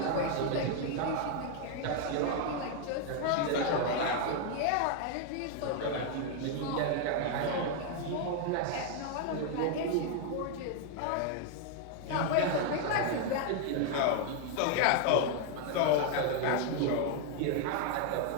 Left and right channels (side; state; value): both; different; correlation 0.00